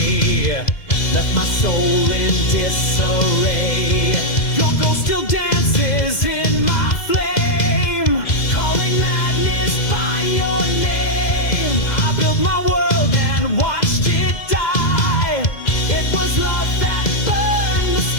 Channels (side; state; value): right; late; 2.0 ms